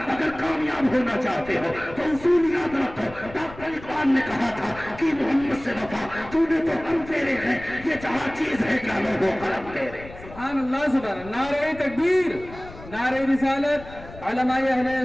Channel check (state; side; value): noise; left; rumble, 17 dB below the sound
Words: अगर कामयाब होना चाहते हो तो उसूल याद रखो। डॉक्टर इकबाल ने कहा था कि मोहम्मद से वफा, तूने तो हम तेरे हैं, ये जहां चीज है क्या लोगों कलम तेरे। सुभान अल्लाह, सुभान। नारे तकबीर, नारे रिसालत, उलमाए अहले